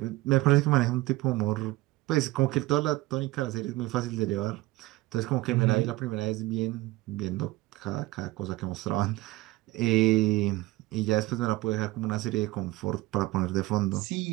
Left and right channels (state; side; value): quieter; left; 19.0 dB